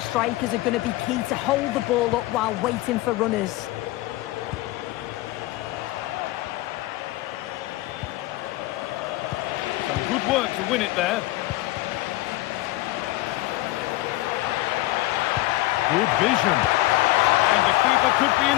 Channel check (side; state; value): right; quieter; 18.0 dB